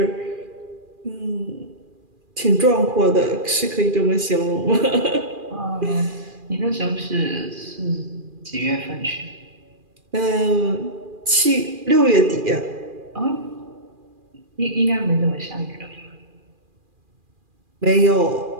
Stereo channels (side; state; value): left; late; 2.4 ms